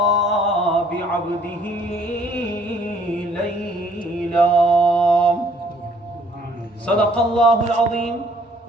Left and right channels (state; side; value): normal; both; correlation 0.61